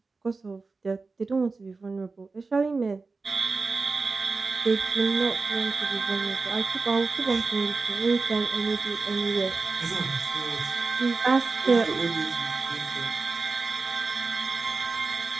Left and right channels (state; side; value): quieter; left; 4.0 dB